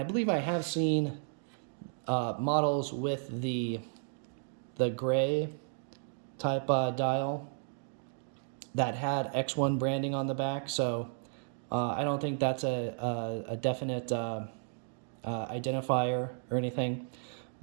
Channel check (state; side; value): silent; left; digital silence